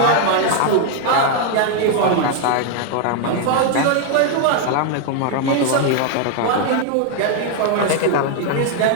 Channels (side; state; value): both; different; correlation 0.00